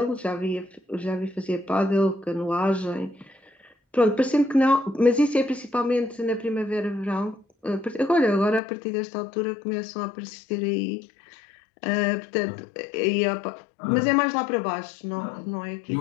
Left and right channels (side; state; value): right; drops out; at 8.6 s